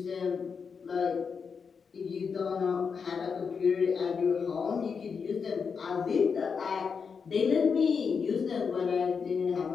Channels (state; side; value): quieter; right; 5.8 dB